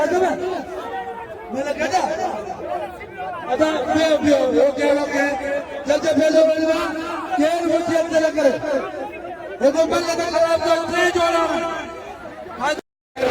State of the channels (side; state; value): both; identical; correlation 1.00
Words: में मैंने कहा अदा ओके जल्दी भेजो बलवा केर मुझे अंदर करे वो तो बल्ले का खराब तो ट्रे जोड़ा